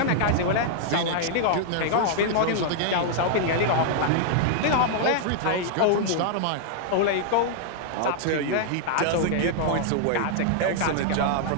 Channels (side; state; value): both; different; correlation -0.01